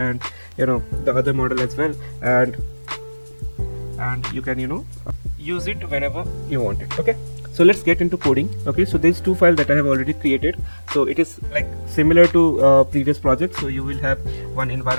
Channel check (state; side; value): inverted; both; correlation -1.00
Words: the other model as well, and you can use it whenever you want it. Okay, so let's get into coding. Okay, so there's two files that I have already created. So it is like similar to previous projects. So you will have one